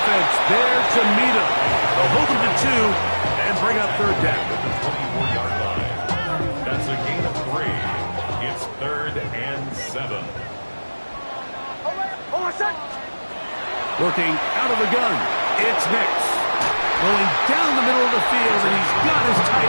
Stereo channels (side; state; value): both; inverted; correlation -1.00